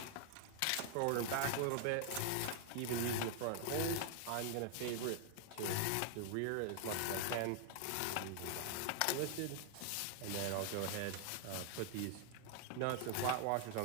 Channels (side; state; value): both; different; correlation 0.00